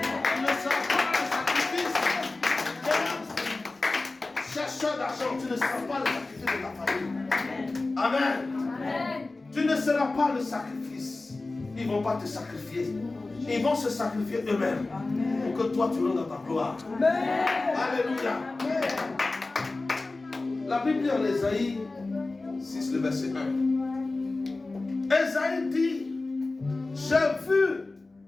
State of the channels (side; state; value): right; quieter; 3.3 dB